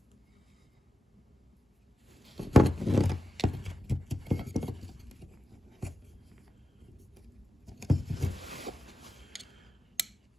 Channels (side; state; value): both; normal; correlation 0.91